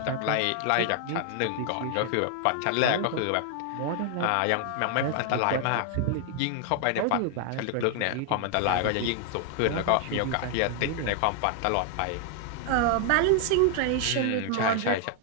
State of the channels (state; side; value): different; both; correlation 0.00